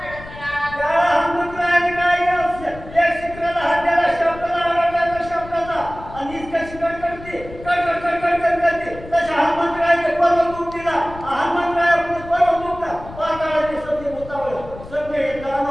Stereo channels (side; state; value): left; noise; rumble, 16 dB below the sound